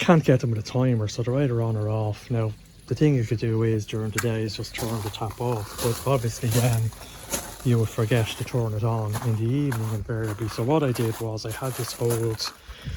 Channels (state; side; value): identical; both; correlation 1.00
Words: get them with a timer, so they're either on or off. Now, the thing you could do is, during the day, is just turn the tap off. But obviously then you would forget to turn it on in the evening invariably. So what I did was, I had this old